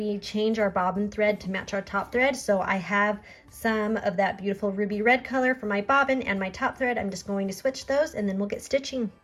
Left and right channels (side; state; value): both; identical; correlation 1.00